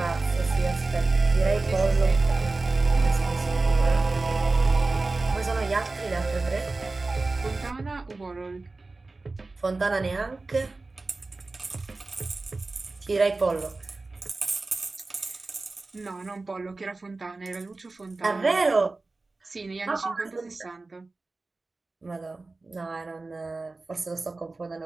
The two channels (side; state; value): left; quieter; 3.5 dB